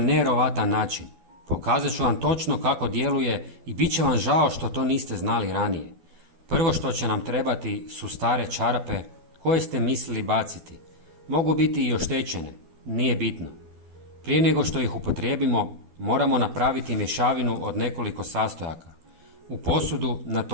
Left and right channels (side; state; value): left; late; 12 ms